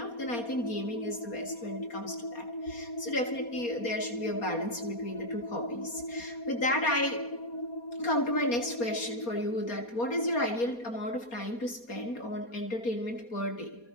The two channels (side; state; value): right; late; 4.2 ms